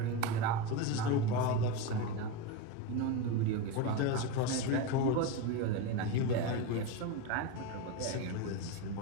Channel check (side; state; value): both; different; correlation 0.07